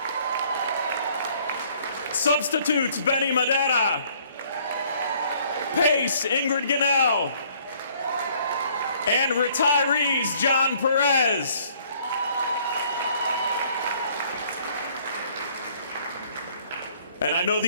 Substitutes, Benny Madera. PACE, Ingrid Gunnell. And retirees, John Perez. And I know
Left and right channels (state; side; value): inverted; both; correlation -0.60